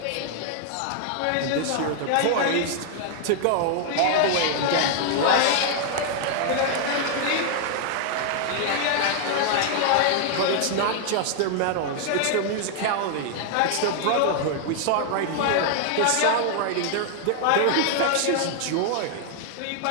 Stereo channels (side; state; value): both; different; correlation 0.00